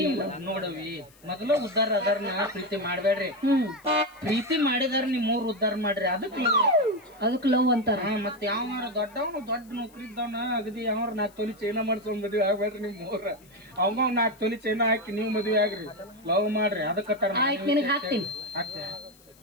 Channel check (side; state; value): left; noise; hiss, 28 dB below the sound